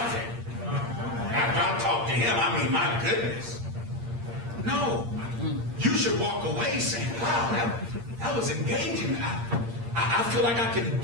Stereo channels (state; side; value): late; left; 8.6 ms